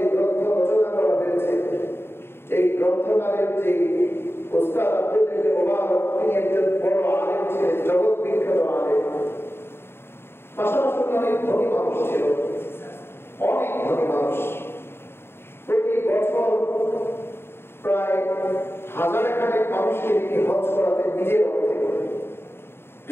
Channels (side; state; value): right; late; 0.11 ms